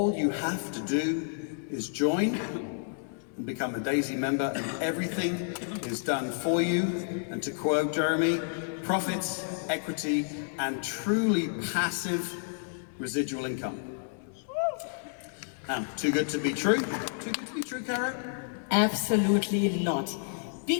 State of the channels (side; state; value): right; silent; digital silence